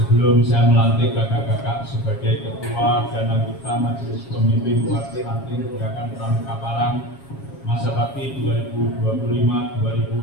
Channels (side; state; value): right; late; 7.3 ms